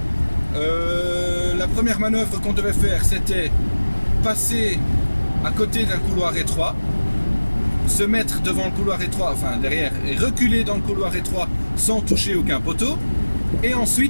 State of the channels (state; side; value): inverted; both; correlation -1.00